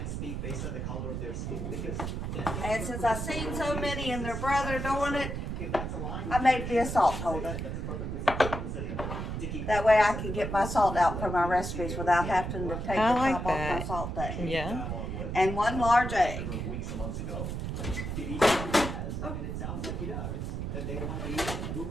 And since I've seen so many and their brother doing it, I made me a salt holder. That way I can get my salt out for my recipes without having to take the top off my salt thing. Yeah. And 1 large egg.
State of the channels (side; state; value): right; noise; rumble, 4 dB below the sound